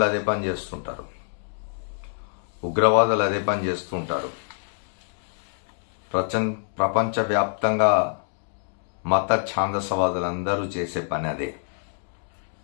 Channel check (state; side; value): silent; right; digital silence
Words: అదే పని చేస్తుంటారు, ఉగ్రవాదులు అదే పని చేస్తుంటారు. ప్రపంచవ్యాప్తంగా మత ఛాందసవాదులందరూ చేసే పని అదే.